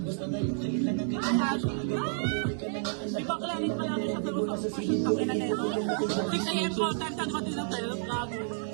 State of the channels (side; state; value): left; silent; digital silence